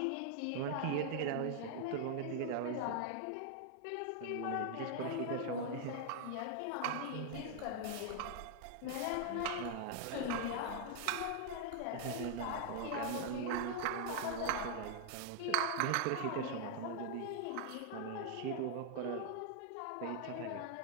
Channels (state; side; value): different; both; correlation 0.00